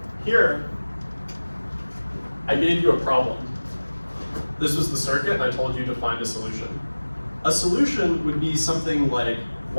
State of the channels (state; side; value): inverted; both; correlation -1.00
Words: Here, I gave you a problem. This was the circuit, and I told you to find a solution. A solution would be something like